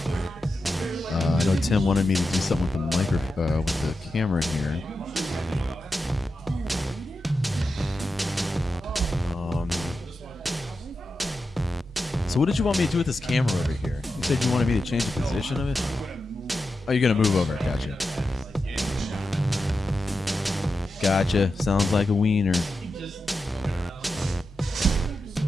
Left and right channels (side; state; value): both; normal; correlation 0.90